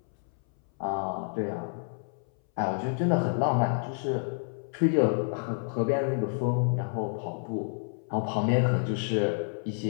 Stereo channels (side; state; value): right; silent; 58 dB below the other